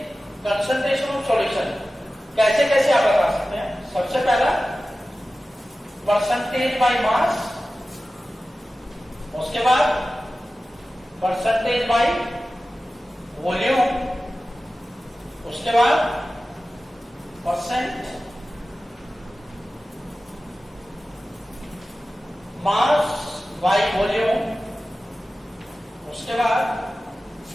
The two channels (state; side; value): normal; both; correlation 0.95